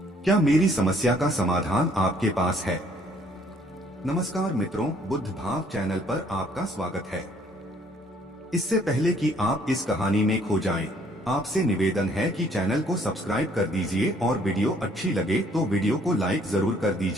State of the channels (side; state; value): both; normal; correlation 0.62